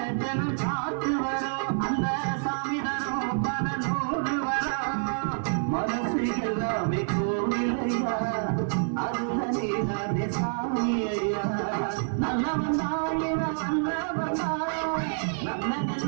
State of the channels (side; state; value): left; silent; 60 dB below the other